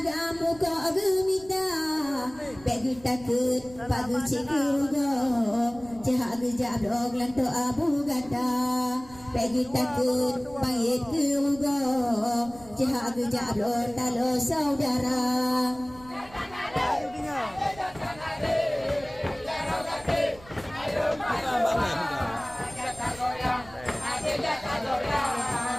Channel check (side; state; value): right; noise; rumble, 21 dB below the sound